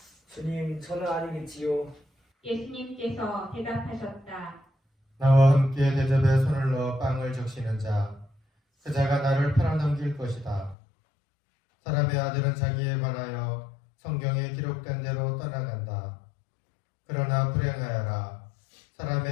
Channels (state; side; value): drops out; right; at 10.8 s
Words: 주님, 저는 아니겠지요. 예수님께서 대답하셨다. 나와 함께 대접에 손을 넣어 빵을 적시는 자, 그 자가 나를 팔아넘길 것이다. 사람의 아들은 자기에 관하여 성경에 기록된 대로 떠나간다. 그러나 불행하여라.